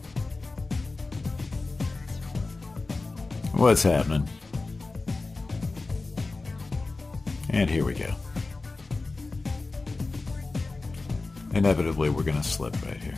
What's happening? And here we go. Inevitably, we're going to slip right here.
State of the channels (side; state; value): right; quieter; 3.5 dB